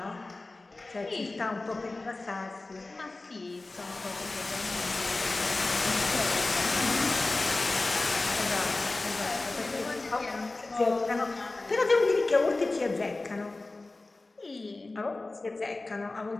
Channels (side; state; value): right; quieter; 3.2 dB